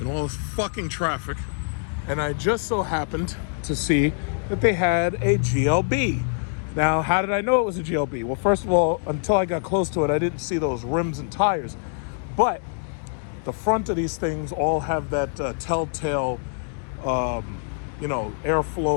in all this fucking traffic, and I just so happened to see that they had a GLB. Now, how did I know it was a GLB? Well, first of all, until I got close to it, I didn't see those rims and tires. But the front of these things all have that telltale,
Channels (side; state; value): right; silent; 59 dB below the other